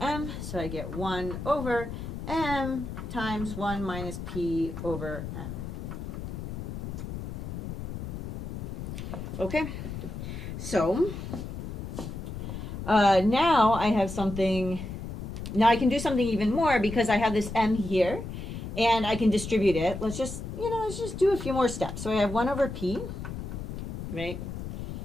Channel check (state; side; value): noise; left; rumble, 7 dB below the sound